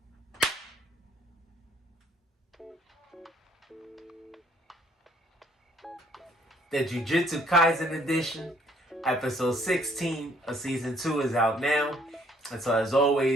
The Jujutsu Kaisen edition, episode 16 of season 2 is out now. And so as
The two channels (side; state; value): both; normal; correlation 0.63